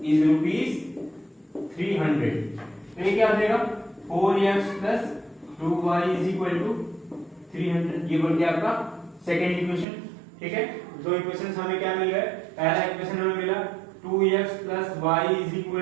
is rupees 300। तो ये क्या हो जाएगा, 4x plus 2y is equal to 300, ये बन गया आपका सेकंड इक्वेशन, ठीक है। दो इक्वेशंस हमें क्या मिल गए, पहला इक्वेशन हमें मिला 2x plus y is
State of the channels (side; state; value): left; drops out; at 9.9 s